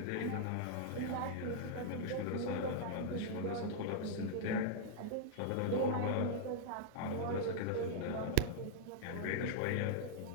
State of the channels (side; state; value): both; different; correlation -0.02